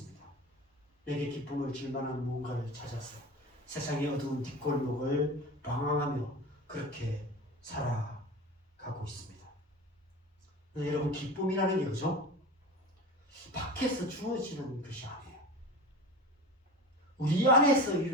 내게 기쁨을 줄 만한 무언가를 찾아서 세상의 어두운 뒷골목을 방황하며 그렇게 살아가고 있습니다. 여러분, 기쁨이라는 게 그죠? 밖에서 주어지는 것이 아니에요. 우리 안에서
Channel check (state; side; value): normal; both; correlation 0.32